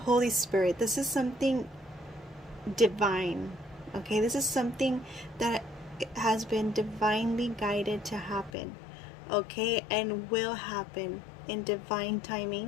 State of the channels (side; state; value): right; drops out; at 8.5 s